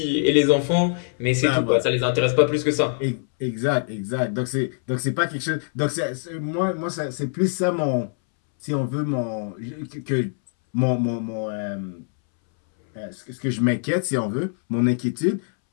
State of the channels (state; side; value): silent; right; 63 dB below the other